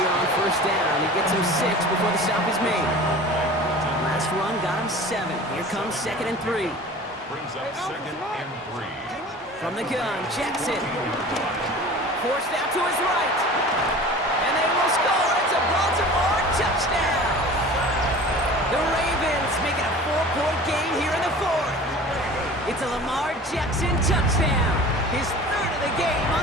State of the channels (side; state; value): both; normal; correlation 0.40